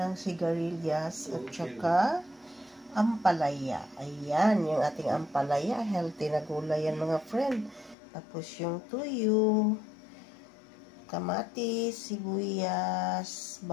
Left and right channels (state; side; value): drops out; right; at 8.0 s